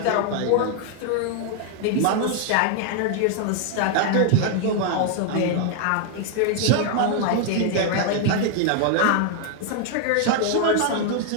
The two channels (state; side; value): different; both; correlation 0.00